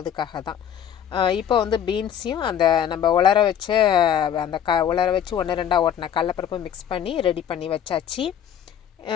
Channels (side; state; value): right; quieter; 9.3 dB